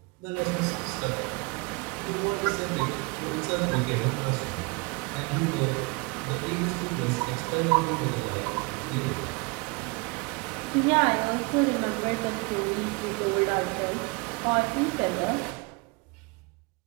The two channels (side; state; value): left; quieter; 28.5 dB